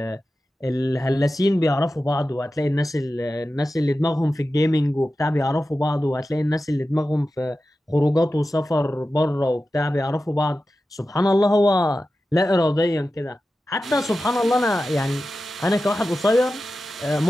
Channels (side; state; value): both; normal; correlation 0.93